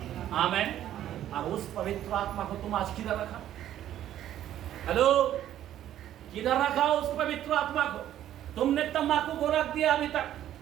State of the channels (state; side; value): quieter; left; 11.8 dB